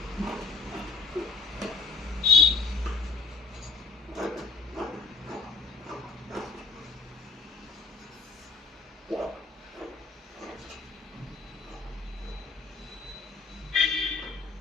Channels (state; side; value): quieter; right; 4.3 dB